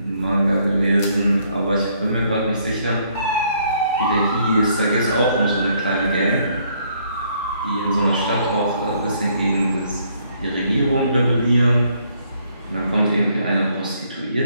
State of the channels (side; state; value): both; inverted; correlation -0.67